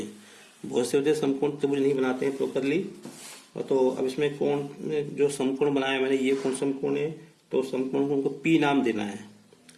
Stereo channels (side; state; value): both; identical; correlation 1.00